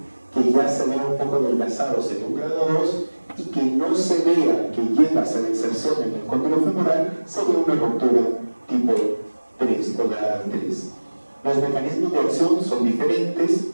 que ya se vea un poco adelgazado sería un grado 2, y que no se vea que llega a la inserción en el cóndilo femoral sería una ruptura tipo 3 o grado 3. Los mecanismos de acción son diferentes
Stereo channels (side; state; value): both; inverted; correlation -1.00